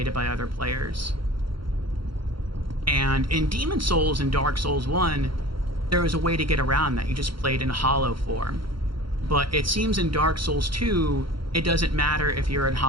by other players. And in Demon Souls and Dark Souls 1, there was a way to get around that. You just played in hollow form. But it seems in Dark Souls 2, it doesn't matter if you're in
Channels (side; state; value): left; late; 0.73 ms